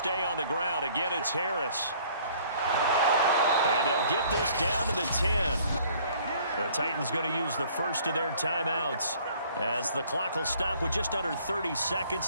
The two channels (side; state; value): both; inverted; correlation -0.57